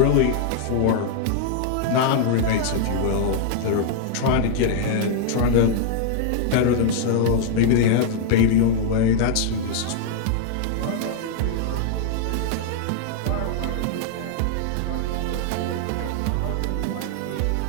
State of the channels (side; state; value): both; different; correlation -0.01